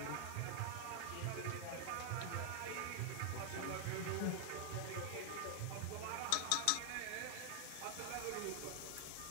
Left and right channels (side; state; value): both; different; correlation 0.00